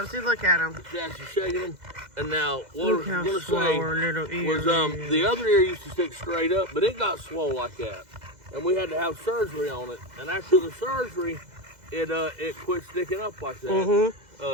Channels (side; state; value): left; late; 2.0 ms